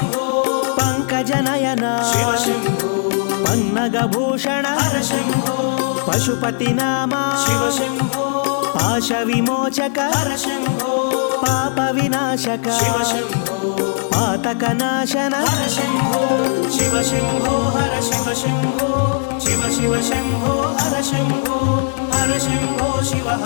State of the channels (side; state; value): right; silent; digital silence